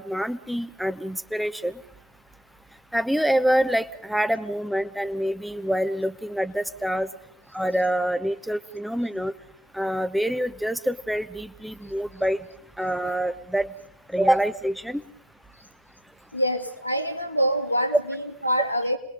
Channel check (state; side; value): normal; both; correlation 0.61